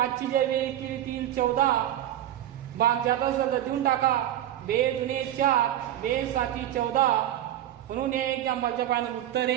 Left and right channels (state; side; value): quieter; left; 12.1 dB